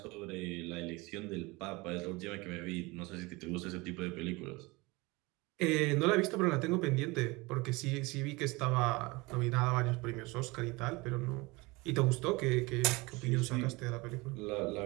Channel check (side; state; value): left; quieter; 24.0 dB